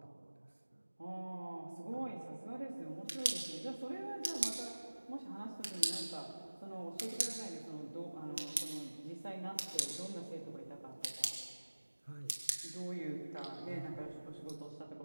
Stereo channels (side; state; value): both; inverted; correlation -1.00